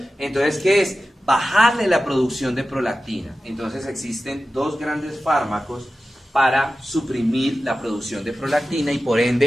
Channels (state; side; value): normal; both; correlation 0.94